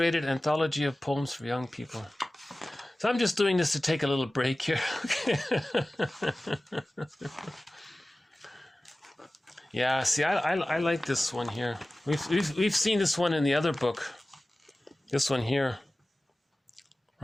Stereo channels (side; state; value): both; normal; correlation 0.97